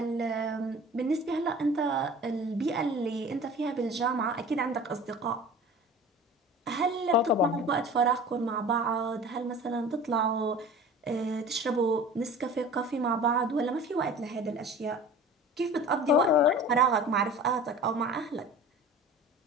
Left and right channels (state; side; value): normal; both; correlation 0.41